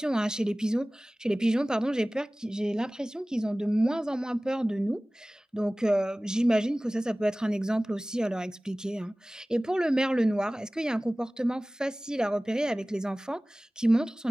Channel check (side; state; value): both; normal; correlation 0.98